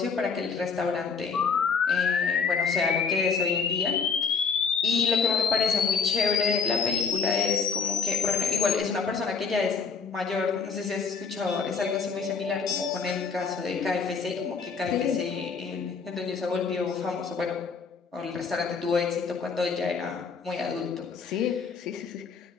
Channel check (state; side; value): quieter; right; 5.5 dB